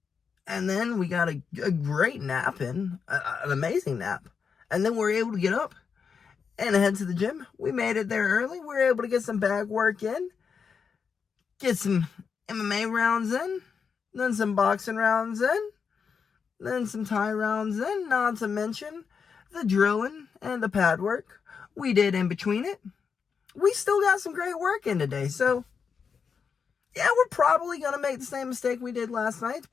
And then we got a great nap in, an amazing nap. And then we were able to get up and head to the gym. We made it there early. We were able to get some bag work in, get some MMA rounds in, then some boxing rounds in, then some Thai rounds in, not to mention the drilling and the pad work we did in between it. We still got some great work in today. So, yeah, we're probably going to make the same mistake we did last night,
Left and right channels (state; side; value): quieter; right; 6.1 dB